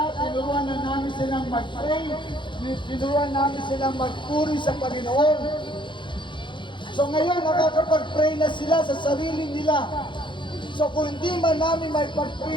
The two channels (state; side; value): late; right; 0.23 ms